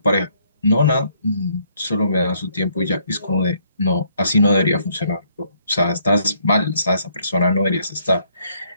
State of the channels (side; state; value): both; inverted; correlation -0.68